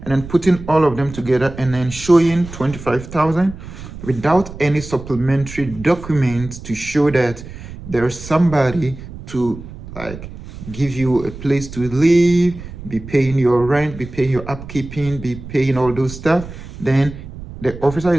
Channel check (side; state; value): right; noise; rumble, 13 dB below the sound